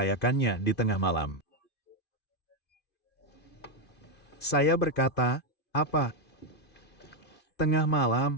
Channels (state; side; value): late; right; 2.5 ms